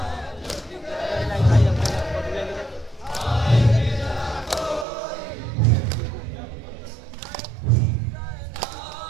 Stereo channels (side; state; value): left; drops out; at 4.9 s